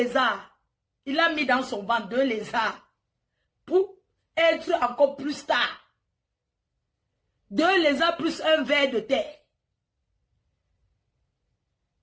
Il a mis dans son ventre 2 lézards. Pour être encore plus tard. 2 lézards plus un ver de terre.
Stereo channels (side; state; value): both; identical; correlation 1.00